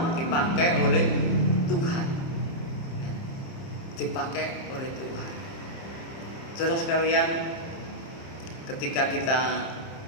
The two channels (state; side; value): late; right; 30 ms